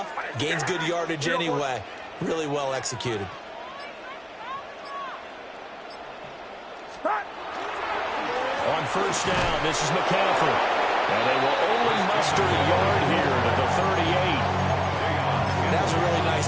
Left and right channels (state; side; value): identical; both; correlation 1.00